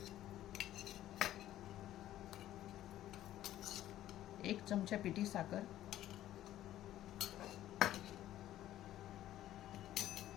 एक चमचा पिठी साखर.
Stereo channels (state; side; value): quieter; right; 13.2 dB